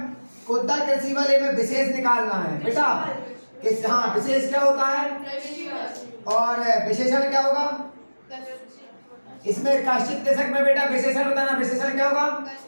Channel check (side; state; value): both; inverted; correlation -1.00